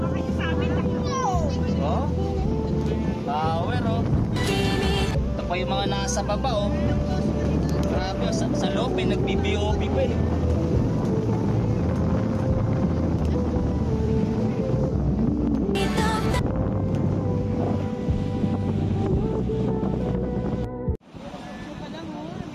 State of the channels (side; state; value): both; identical; correlation 1.00